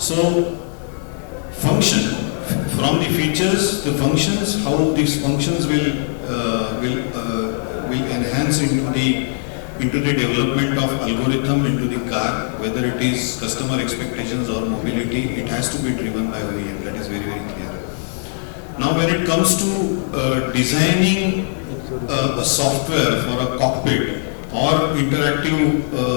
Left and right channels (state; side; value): silent; right; digital silence